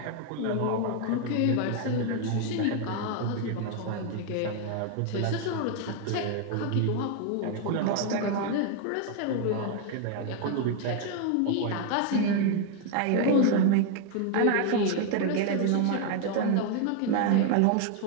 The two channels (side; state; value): both; different; correlation 0.01